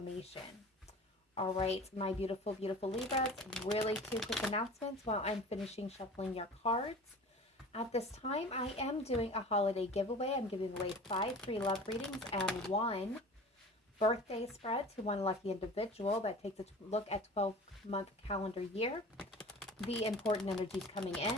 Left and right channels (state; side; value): normal; both; correlation 0.40